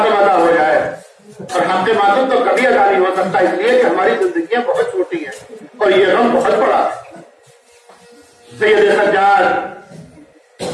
अदा हो जाए। और हक के मातम तो कभी अदा नहीं हो सकता, इसलिए कि हमारी जिंदगियां बहुत छोटी हैं और ये गम बहुत बड़ा है। सैयद सज्जाद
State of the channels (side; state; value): both; identical; correlation 1.00